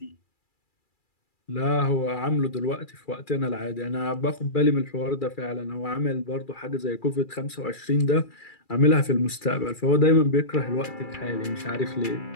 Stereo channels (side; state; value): right; late; 2.3 ms